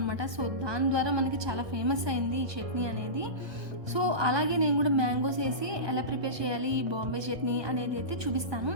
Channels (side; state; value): left; late; 1.2 ms